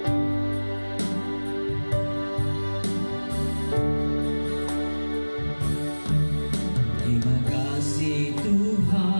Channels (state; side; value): inverted; both; correlation -1.00